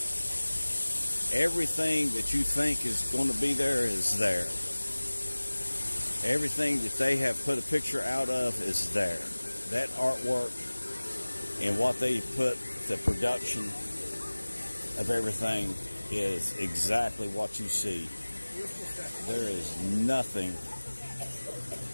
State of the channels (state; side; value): inverted; both; correlation -1.00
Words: Everything that you think is going to be there is there. Everything that they have put a picture out of is there. That artwork and what they put, the production of everything is exactly what you see. There is nothing